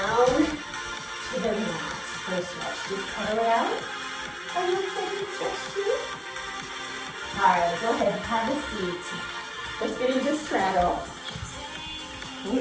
to the mat for a stretch. Just pedal it out. And let's take a stretch too. All right, go ahead, have a seat. Let's get into straddle. We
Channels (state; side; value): identical; both; correlation 1.00